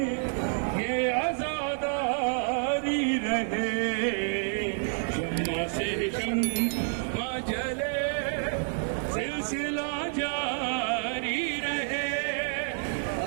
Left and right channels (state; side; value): silent; left; 58 dB below the other